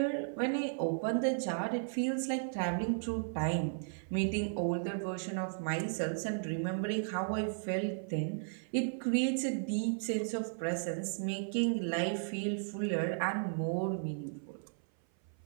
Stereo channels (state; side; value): silent; left; 54 dB below the other